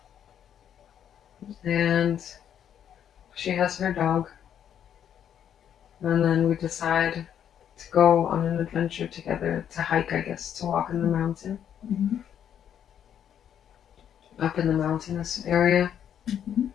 And she has her dog. And then we decide to go on an adventure together, to hike, I guess, to walk in the mountain. Up in the mountainous area.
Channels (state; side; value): quieter; right; 9.3 dB